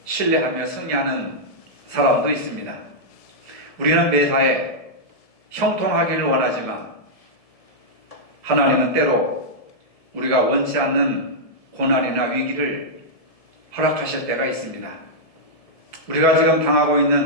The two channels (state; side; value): late; right; 1.7 ms